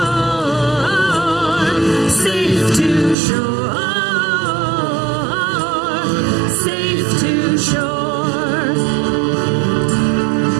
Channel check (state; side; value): drops out; left; at 3.2 s